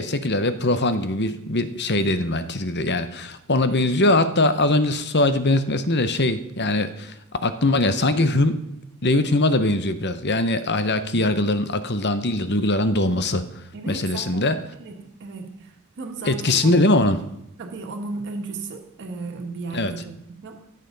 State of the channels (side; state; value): both; normal; correlation 0.28